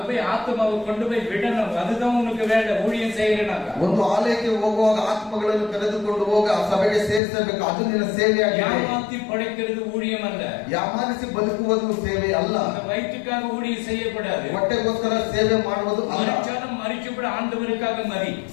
போய் ஆத்மாவை கொண்டு போய் விடணும், அதுதான் உனக்கு வேலை. ஊழியம் செய்யறனாக்க ಒಂದು ಆಲಯಕ್ಕೆ ಹೋಗುವಾಗ ಆತ್ಮಗಳನ್ನು ಕರೆದುಕೊಂಡು ಹೋಗ ಆ ಸಭೆಗೆ ಸೇರಿಸಬೇಕು, ಅದು ನಿನ್ನ ಸೇವೆಯಾಗಿದೆ. ஏமாத்தி படைக்கிறது ஊழியம் அல்ல, ಯಾಮಾನಿಸಿ ಬದುಕುವುದು ಸೇವೆ ಅಲ್ಲ. அந்த வயிற்றுக்காக ஊழியம் செய்யக்கூடாது, ಹೊಟ್ಟೆಗೋಸ್ಕರ ಸೇವೆ ಮಾಡುವುದು ಅಲ್ಲ. மறிச்சாலும் மறிச்சு கூட ஆண்டவருக்காக மறி,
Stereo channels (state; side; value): drops out; right; at 7.2 s